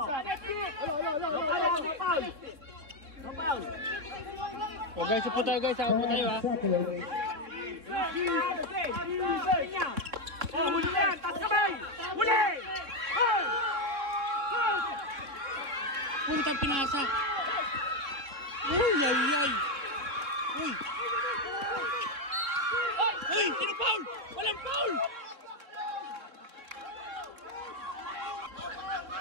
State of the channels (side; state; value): left; late; 3.6 ms